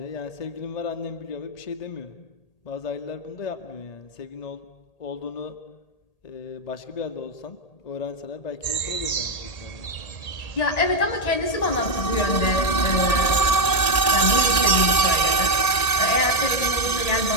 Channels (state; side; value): late; right; 1.8 ms